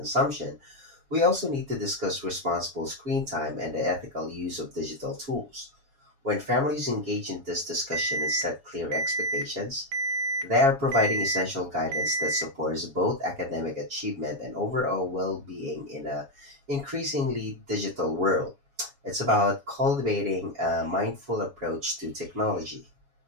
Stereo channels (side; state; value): left; late; 7.2 ms